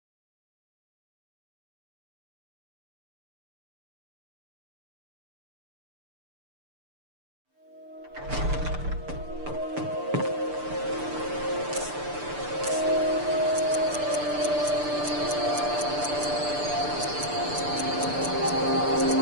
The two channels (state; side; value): late; left; 6.8 ms